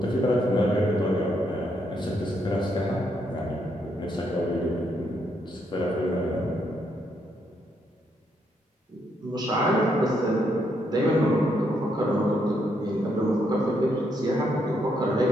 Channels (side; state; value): both; normal; correlation 0.76